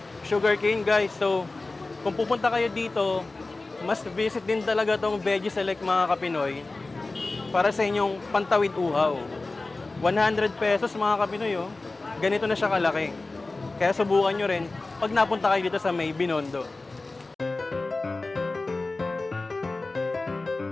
Sugarcane, guys. So, kung pupunta kayo dito, must visit din talaga tong Veggie Select mga Kapinoy para sa inyong pantawid uhaw. 100 pesos mga Kapinoy, oh. Ganito na siya kalaki. Kaya subukan nyo rin pag napunta kayo dito sa may Binondo.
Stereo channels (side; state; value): right; quieter; 3.3 dB